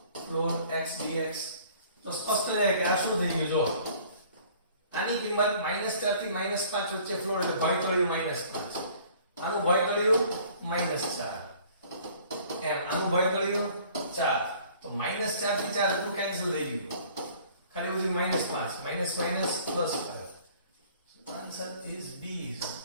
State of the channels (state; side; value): inverted; both; correlation -0.53